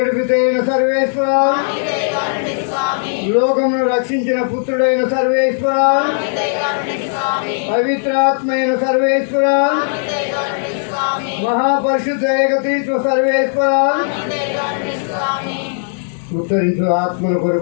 సర్వేశ్వర, లోకమును రక్షించిన పుత్రుడైన సర్వేశ్వర, పవిత్రాత్మైన సర్వేశ్వర, మహాపరిశుద్ధ ఏకతీత్వ సర్వేశ్వర, ఉత్తరించు ఆత్మల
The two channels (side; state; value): right; silent; 63 dB below the other